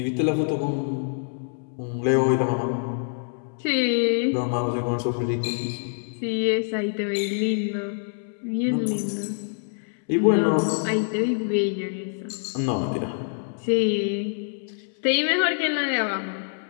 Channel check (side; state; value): right; silent; 61 dB below the other